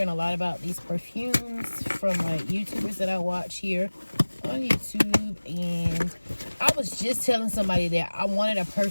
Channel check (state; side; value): inverted; both; correlation -1.00